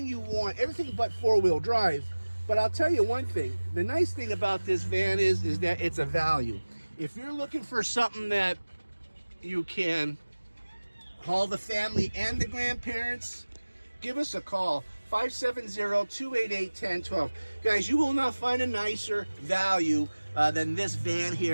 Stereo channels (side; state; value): both; inverted; correlation -1.00